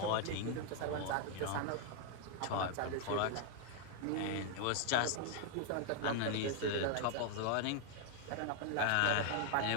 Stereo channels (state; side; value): different; both; correlation 0.00